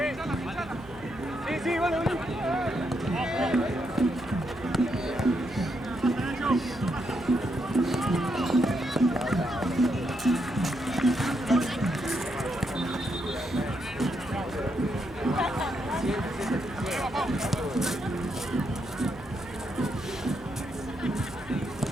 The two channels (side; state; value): right; noise; hum, 20 dB below the sound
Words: Sí, sí, bueno.